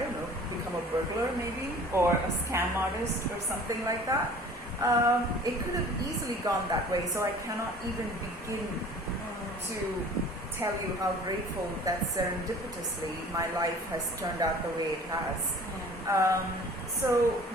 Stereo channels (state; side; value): normal; both; correlation 0.47